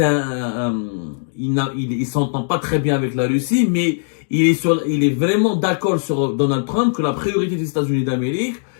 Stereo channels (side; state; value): right; silent; digital silence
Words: il s'entend pas très bien avec la Russie, mais il est vraiment d'accord sur Donald Trump que la priorité des États-Unis d'Amérique,